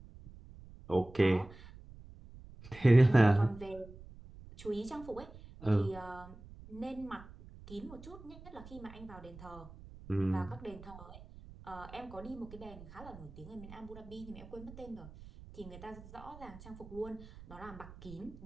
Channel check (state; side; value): noise; right; rumble, 17 dB below the sound